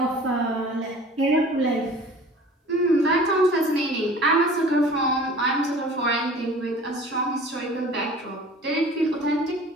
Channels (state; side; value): normal; both; correlation 0.45